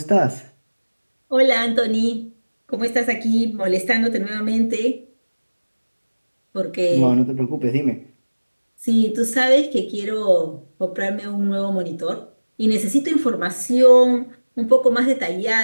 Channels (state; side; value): inverted; both; correlation -1.00